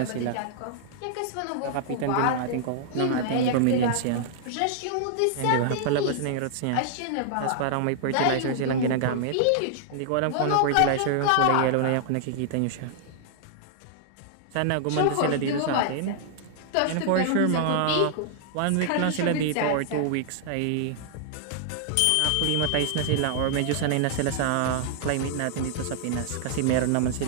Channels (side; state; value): both; different; correlation -0.01